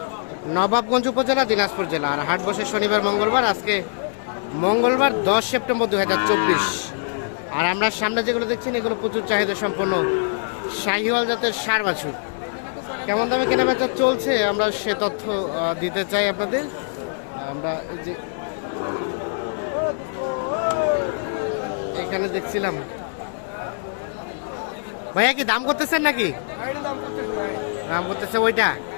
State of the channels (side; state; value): right; silent; digital silence